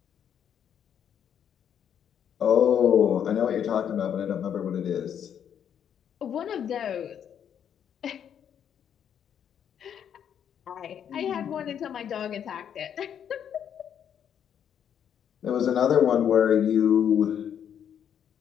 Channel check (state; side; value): quieter; right; 8.8 dB